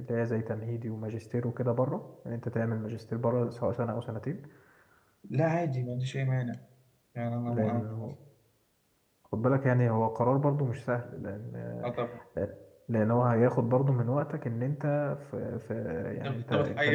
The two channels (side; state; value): both; identical; correlation 1.00